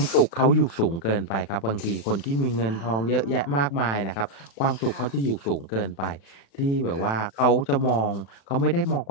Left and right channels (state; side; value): late; right; 36 ms